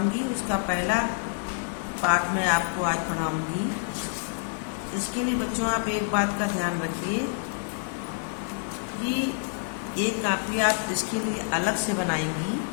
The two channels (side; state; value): right; silent; digital silence